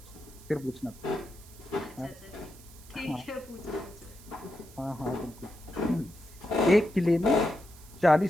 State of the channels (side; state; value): right; noise; hiss, 21 dB below the sound